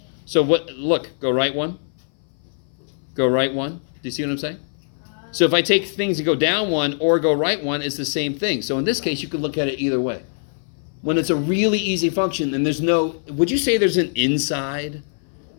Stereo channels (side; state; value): right; silent; 59 dB below the other